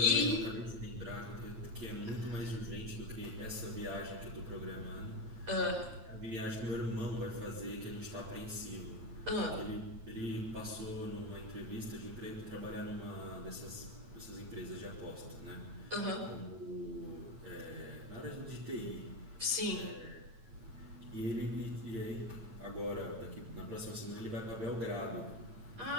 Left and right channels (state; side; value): late; left; 9.0 ms